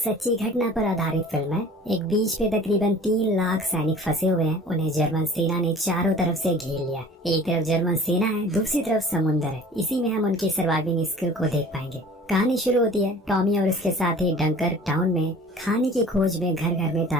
घटना पर आधारित फिल्म है। एक बीच पे तकरीबन 3 लाख सैनिक फंसे हुए हैं। उन्हें जर्मन सेना ने चारों तरफ से घेर लिया। एक तरफ जर्मन सेना है, दूसरी तरफ समुद्र है। इसी में हम उनकी सर्वाइविंग स्किल को देख पाएंगे। कहानी शुरू होती है टॉमी और उसके साथी डंकर टाउन में खाने की खोज में घर घर में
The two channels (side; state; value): both; normal; correlation 0.46